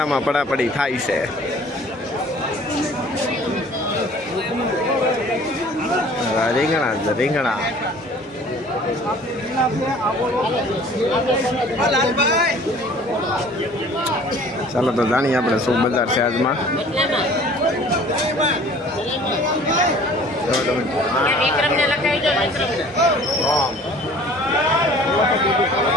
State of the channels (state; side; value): normal; both; correlation 0.50